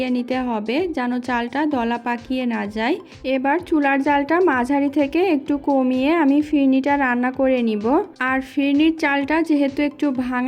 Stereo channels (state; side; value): identical; both; correlation 1.00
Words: নিতে হবে, যেন চালটা দলা পাকিয়ে না যায়। এবার চুলার জালটা মাঝারি থেকে একটু কমিয়ে আমি ফিরনিটা রান্না করে নিব। আর ফিরনির চালটা যেহেতু একটু